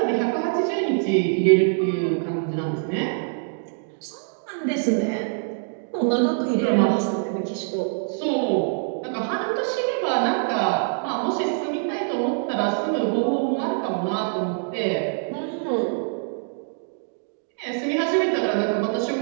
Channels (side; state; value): left; silent; digital silence